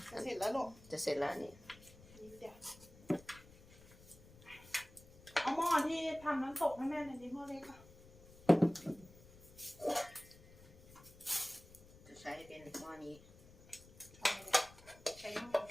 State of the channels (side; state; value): left; noise; rumble, 22 dB below the sound